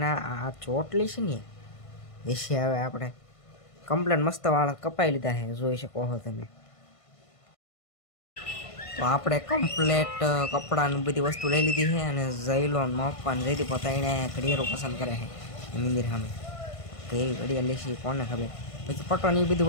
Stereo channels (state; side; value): late; right; 1.5 ms